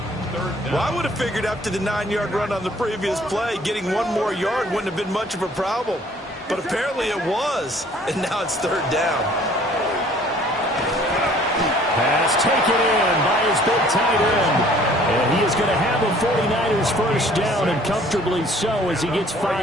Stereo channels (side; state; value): both; normal; correlation 0.56